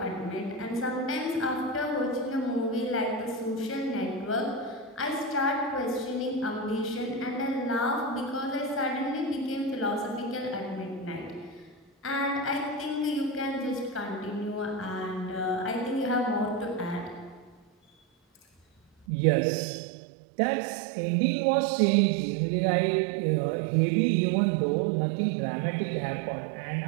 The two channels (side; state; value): left; drops out; at 19.1 s